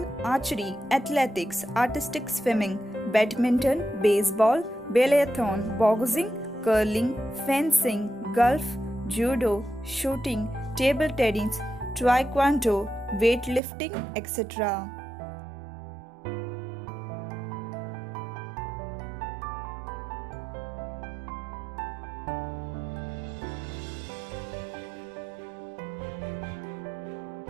archery, athletics, artistic swimming, badminton, baseball, biathlon, boxing, curling, fencing, golf, judo, shooting, table tennis, taekwondo, weightlifting, etc.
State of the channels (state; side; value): drops out; left; at 13.6 s